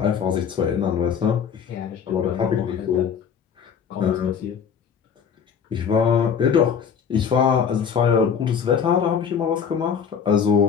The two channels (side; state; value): right; quieter; 7.1 dB